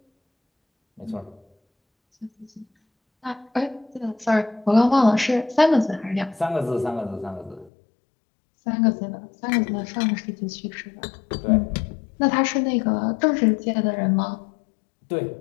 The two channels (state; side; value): drops out; right; at 7.7 s